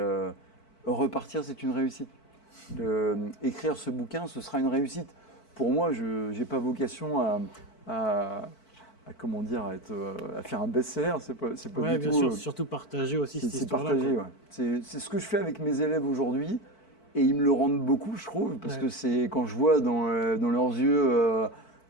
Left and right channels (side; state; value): right; late; 4.5 ms